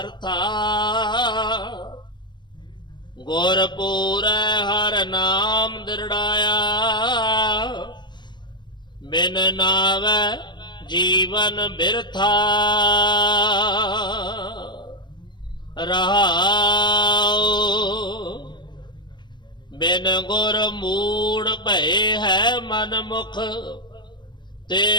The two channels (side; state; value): right; late; 0.22 ms